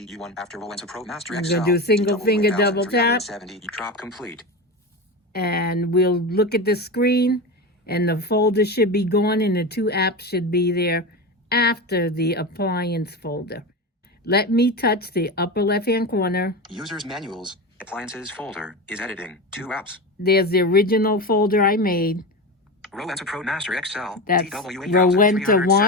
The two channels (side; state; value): both; normal; correlation 0.22